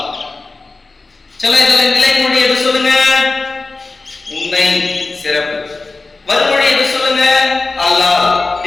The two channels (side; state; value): right; quieter; 3.6 dB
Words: சில இதில் நிலைமொழி எது சொல்லுங்க? உன்னை சிறப்பு. வறுமொழி எது சொல்லுங்க? அல்லால்.